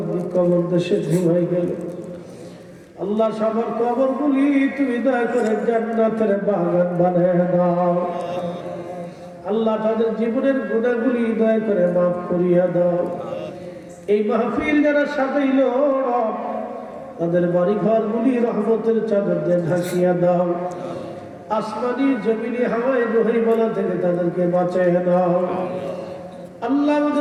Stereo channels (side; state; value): both; identical; correlation 1.00